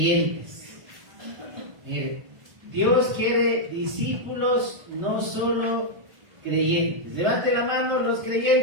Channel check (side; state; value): left; late; 1.5 ms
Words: Mire, Dios quiere discípulos, no solo creyentes. Levante la mano los